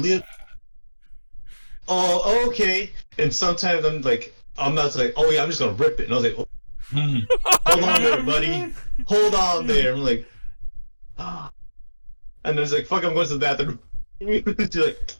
Oh, okay. And sometimes I'm not like, oh yeah, I'm just gonna rip it. And I was like, hold on there, buddy. Hold on there. I'm like, and there's like, fuck, I'm going to the bathroom.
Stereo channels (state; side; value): inverted; both; correlation -1.00